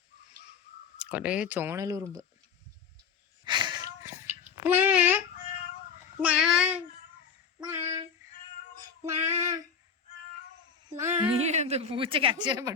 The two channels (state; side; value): quieter; right; 6.5 dB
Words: കൊറേ ചോണലുറുമ്പ്. നീ എന്ത് പൂച്ചക്ക് അക്ഷരം